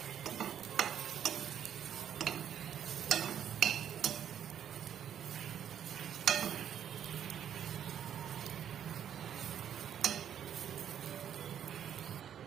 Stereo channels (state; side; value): quieter; left; 9.4 dB